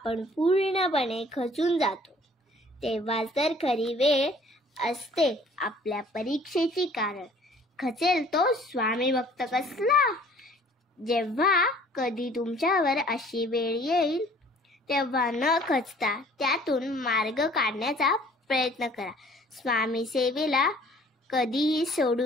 पूर्णपणे खचून जातो. तेव्हा तर खरी वेळ असते आपल्या परीक्षेची. कारण खचेल तो स्वामी भक्त कसला. जेव्हा कधी तुमच्यावर अशी वेळ येईल तेव्हा न खचता त्यातून मार्ग काढण्याचा प्रयत्न करा. स्वामी सेवेला कधीही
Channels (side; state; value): both; normal; correlation 0.53